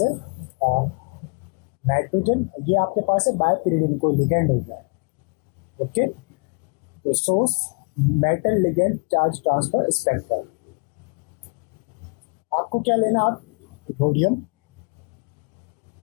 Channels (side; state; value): right; quieter; 34.7 dB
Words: है नाइट्रोजन, ये आपके पास है बायपीरिडिन, कोई लिगेंड हो गया। ओके, तो source metal ligand charge transfer spectrum. आपको क्या लेना, आप रोडियम,